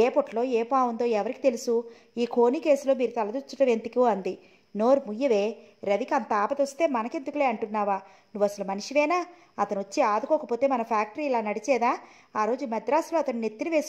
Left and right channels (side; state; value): both; identical; correlation 1.00